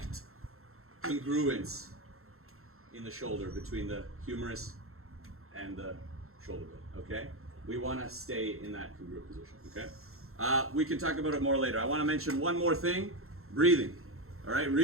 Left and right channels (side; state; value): left; late; 0.62 ms